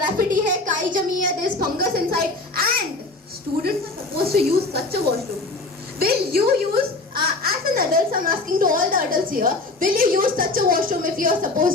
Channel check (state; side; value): quieter; right; 3.2 dB